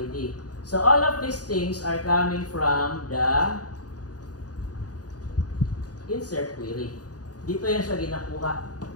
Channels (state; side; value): late; right; 0.68 ms